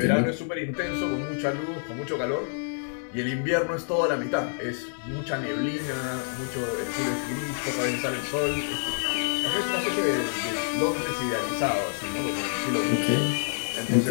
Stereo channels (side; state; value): right; silent; digital silence